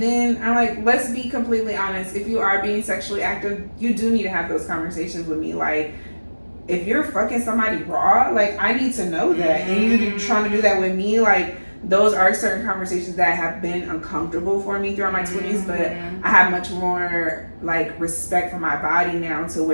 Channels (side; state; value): both; inverted; correlation -1.00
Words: then I'm like, let's be completely honest. If you are being sexually active, you do need to have those conversations with me. Like, if you're fucking somebody raw, like I need to know that. And you trying to do that with me, like those are certain conversations that have been uncomfortable for me throughout my 20s, but I have much more like respect for my body now to